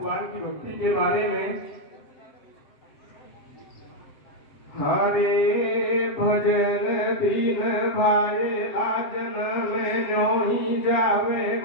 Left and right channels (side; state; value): right; late; 7.6 ms